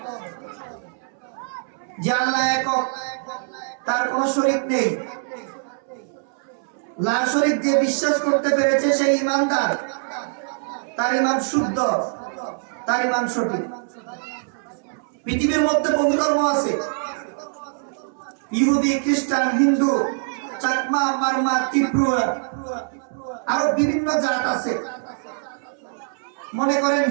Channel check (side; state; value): left; silent; 63 dB below the other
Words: যে আল্লাহ একক, তার কোনো শরীক নেই। লা শরীক যে বিশ্বাস করতে পেরেছে সেই ঈমানদার, তার ঈমান শুদ্ধ, তার ঈমান সঠিক। পৃথিবীর মধ্যে বহু ধর্ম আছে, ইহুদি, খ্রিস্টান, হিন্দু, চাকমা, মারমা, ত্রিপুরা, আরো বিভিন্ন জাত আছে। মনে করেন